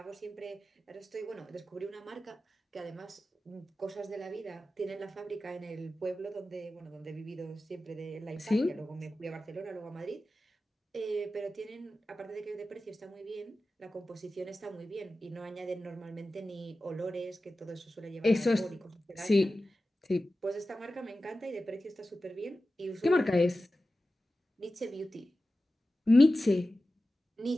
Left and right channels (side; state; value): both; normal; correlation 0.94